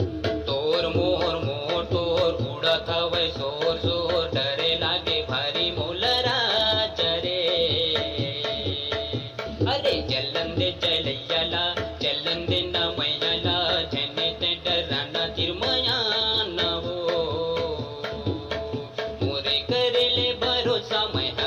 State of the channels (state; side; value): identical; both; correlation 1.00